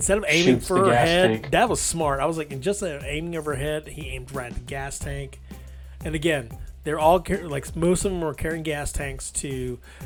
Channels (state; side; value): identical; both; correlation 1.00